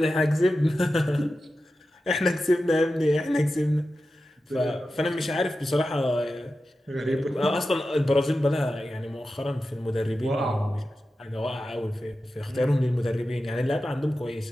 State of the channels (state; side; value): normal; both; correlation 0.92